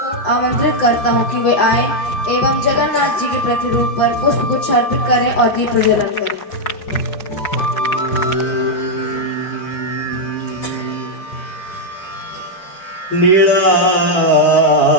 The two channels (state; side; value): late; right; 5.6 ms